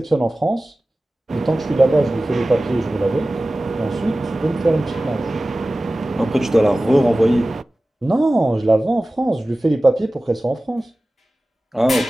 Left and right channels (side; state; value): both; normal; correlation 0.96